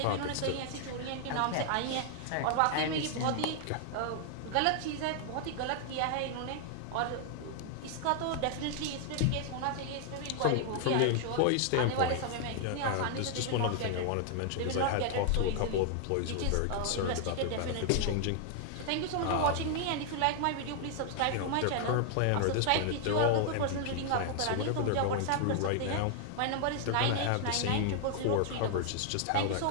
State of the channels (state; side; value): different; both; correlation 0.00